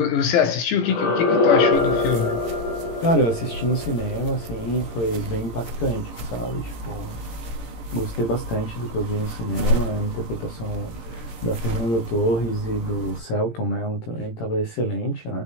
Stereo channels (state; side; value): late; right; 18 ms